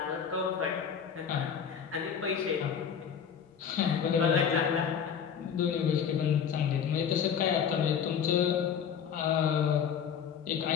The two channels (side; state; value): right; quieter; 7.6 dB